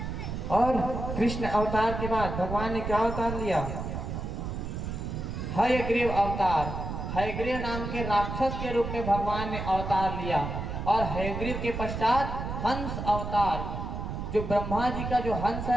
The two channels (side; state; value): right; noise; rumble, 5 dB below the sound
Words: और कृष्ण अवतार के बाद भगवान ने क्या अवतार लिया, हयग्रीव अवतार, हयग्रीव नाम के राक्षस के रूप में भगवान ने अवतार लिया। और हयग्रीव के पश्चात हंस अवतार, जो ब्रह्मा जी का जो हंस